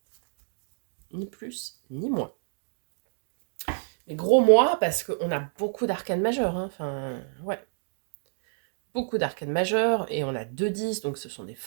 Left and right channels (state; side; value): silent; left; digital silence